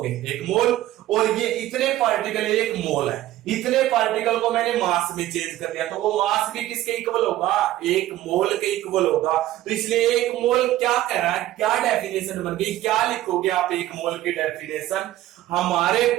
एक मोल, और ये इतने पार्टिकल एक मोल है, इतने पार्टिकल को मैंने मास में चेंज कर दिया, तो वो मास भी किसके इक्वल होगा, एक मोल के इक्वल होगा। तो इसलिए एक मोल क्या कह रहा है, क्या डेफिनेशन बन गई, क्या लिखोगे आप एक मोल की डेफिनेशन, हमारे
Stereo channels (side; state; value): left; quieter; 14.6 dB